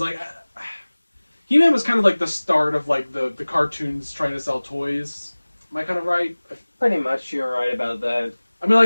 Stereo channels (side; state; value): both; inverted; correlation -1.00